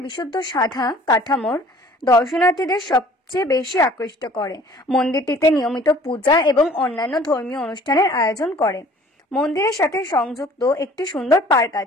বিশুদ্ধ সাদা কাঠামোর দর্শনার্থীদের সবচেয়ে বেশি আকৃষ্ট করে। মন্দিরটিতে নিয়মিত পূজা এবং অন্যান্য ধর্মীয় অনুষ্ঠানের আয়োজন করে। মন্দিরের সাথে সংযুক্ত একটি সুন্দর পার্ক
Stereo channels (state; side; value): normal; both; correlation 0.52